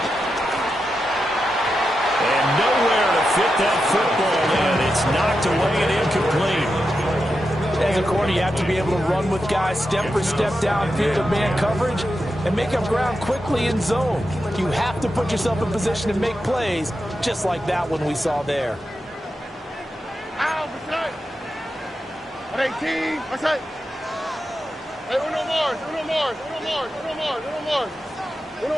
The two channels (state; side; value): normal; both; correlation 0.89